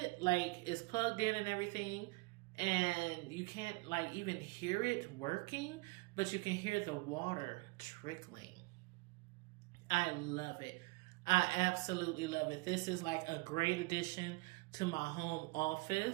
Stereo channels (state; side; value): quieter; left; 25.5 dB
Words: like it's plugged in and everything. And you can't like even hear it working, but you can hear the water trickling. I love it. I absolutely love it. This is like a great addition to my home